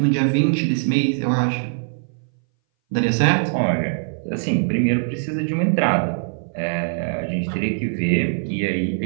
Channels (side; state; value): left; silent; 60 dB below the other